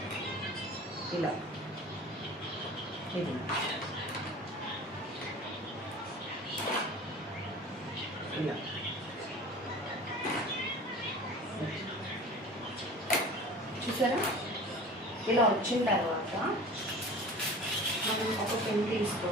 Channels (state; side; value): normal; both; correlation 0.39